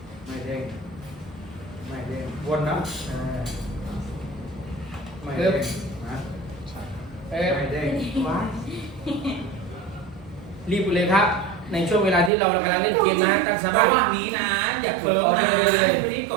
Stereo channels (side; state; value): left; drops out; at 12.3 s